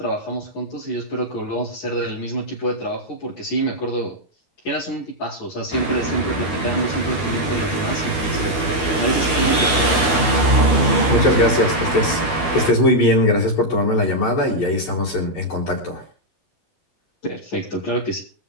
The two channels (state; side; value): late; right; 12 ms